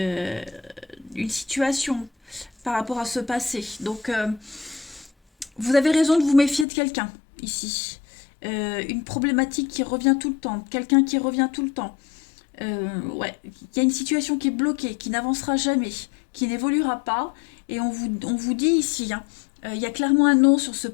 situation par rapport à ce passé. Donc vous avez raison de vous méfier de quelqu'un ici. Une problématique qui revient tout le temps, quelqu'un qui revient tout le temps. Ouais, il y a une situation qui est bloquée, qui n'avancera jamais, qui n'évoluera pas. Et on vous dit ici, hein, il y a clairement un non sur ce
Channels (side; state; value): right; drops out; at 6.7 s